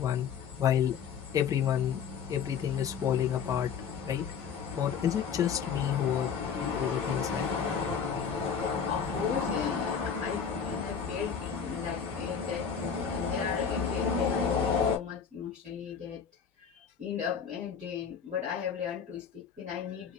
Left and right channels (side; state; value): right; quieter; 7.0 dB